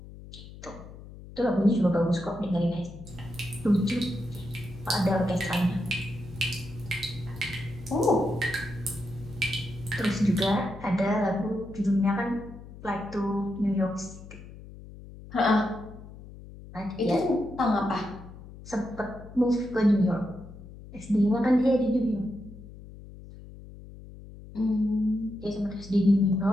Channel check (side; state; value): left; noise; hum, 16 dB below the sound